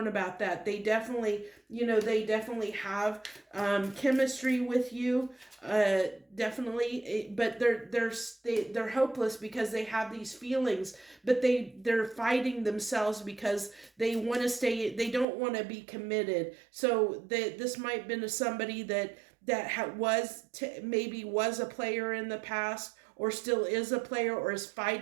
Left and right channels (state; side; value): drops out; left; at 15.2 s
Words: about that. They definitely, they definitely have chemistry with you, definitely, but they're hopeless because they have these feelings, but they're fighting themselves because they want to stay. They don't want to be committed. So this might have been somebody that maybe was a player in the past, or still is a player, or is